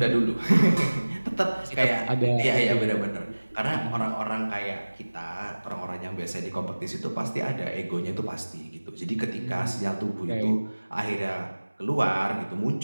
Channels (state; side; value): inverted; both; correlation -1.00